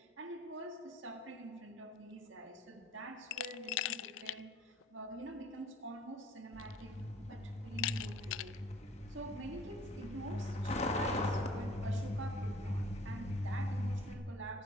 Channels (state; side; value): normal; both; correlation 0.54